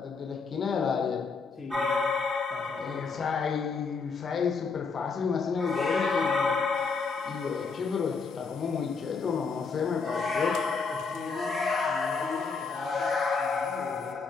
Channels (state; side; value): quieter; right; 4.8 dB